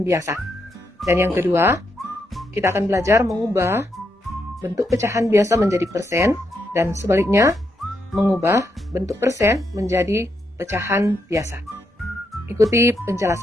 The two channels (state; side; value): normal; both; correlation 0.80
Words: biasa. Dan yang kedua, kita akan belajar mengubah bentuk pecahan biasa menjadi persen dan sebaliknya mengubah bentuk persen menjadi pecahan biasa. Ikuti